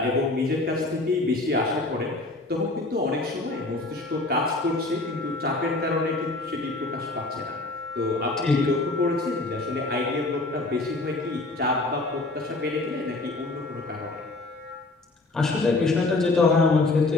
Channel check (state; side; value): quieter; right; 3.1 dB